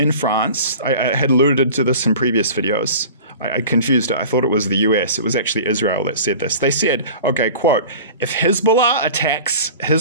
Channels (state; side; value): inverted; both; correlation -0.39